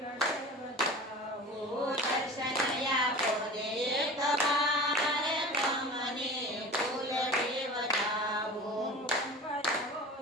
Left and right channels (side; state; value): both; normal; correlation 0.36